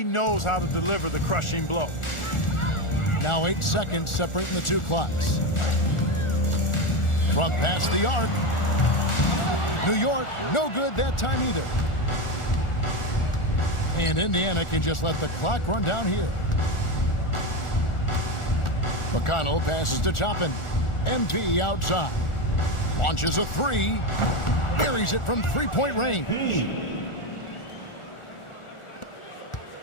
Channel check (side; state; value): right; late; 1.4 ms